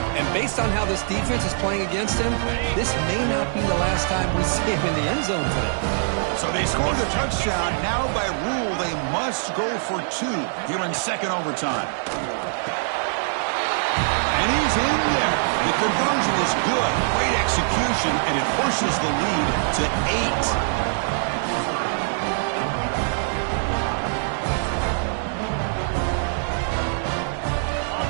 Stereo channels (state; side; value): silent; left; digital silence